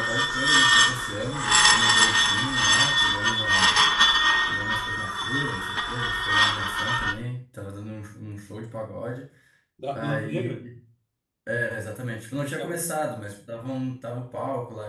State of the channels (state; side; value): identical; both; correlation 1.00